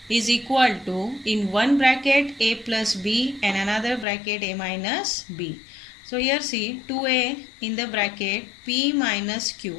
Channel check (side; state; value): right; drops out; at 4.0 s